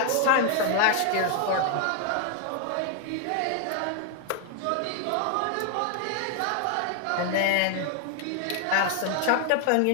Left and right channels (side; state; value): both; different; correlation 0.00